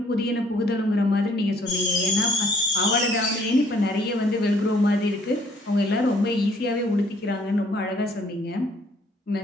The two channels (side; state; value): both; normal; correlation 0.61